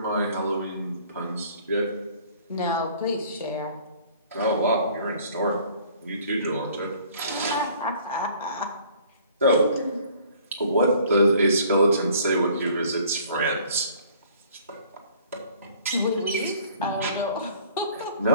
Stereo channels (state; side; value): inverted; both; correlation -0.54